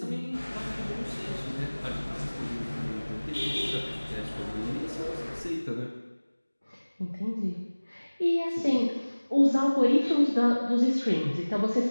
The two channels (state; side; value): inverted; both; correlation -1.00